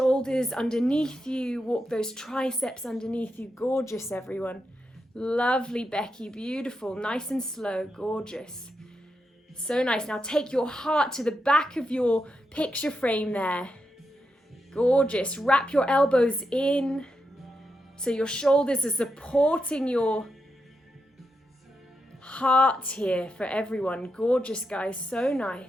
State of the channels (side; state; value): both; normal; correlation 0.86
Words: underneath you, walk those triceps underneath you. Gorgeous, everyone. Lovely, Becky. Beautiful. Nice and slow. Gorgeous. So nice. Now take your heart to the back of your picture frame there. Gorgeous. Wrap your elbows in so your shoulders are supporting your heart here for everyone. Gorgeous, guys. So